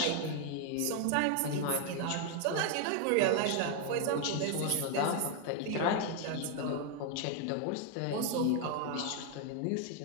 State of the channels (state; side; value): different; both; correlation 0.00